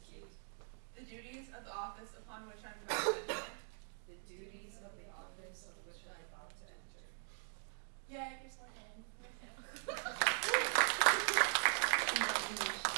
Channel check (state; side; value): silent; left; 50 dB below the other